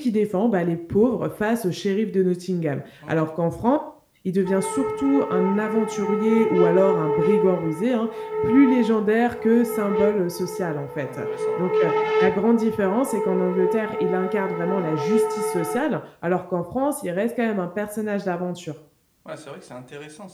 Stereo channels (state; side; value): identical; both; correlation 1.00